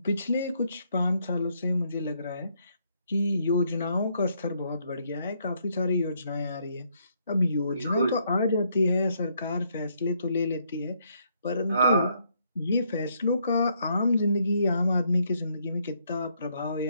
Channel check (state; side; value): inverted; both; correlation -0.72